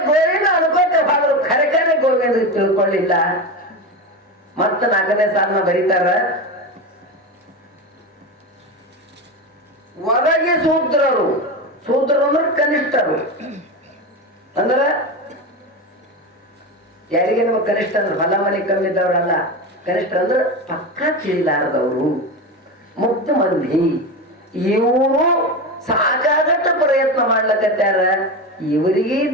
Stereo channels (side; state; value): both; normal; correlation 0.20